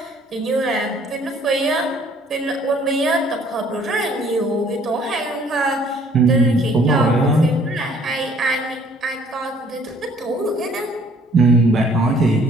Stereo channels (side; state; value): both; normal; correlation 0.59